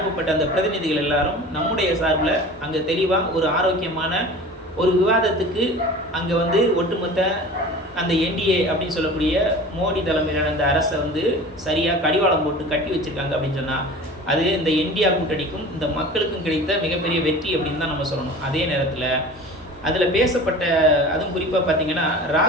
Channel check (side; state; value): both; normal; correlation 0.39